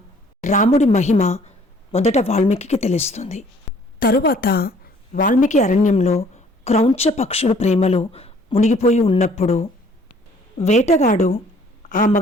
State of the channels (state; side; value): normal; both; correlation 0.58